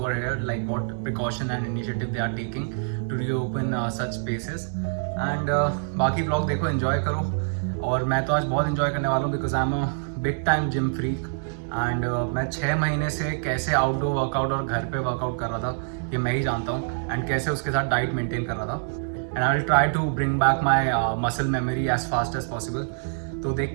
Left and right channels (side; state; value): left; silent; digital silence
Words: here, like what precaution and initiative they are taking to reopen such spaces and बाकी vlog देखो enjoy करो और मैं तो आज बहुत enjoy करने वाला हूँ because I'm a big time gym freak. And मैं 6 महीने से कैसे आउटडोर वर्कआउट और घर पे वर्कआउट कर रहा था ये मैं ही जानता हूँ एंड कैसे उसके साथ डाइट मेंटेन कर रहा था and I will try to bring back my muscle memory as fast as possible. तो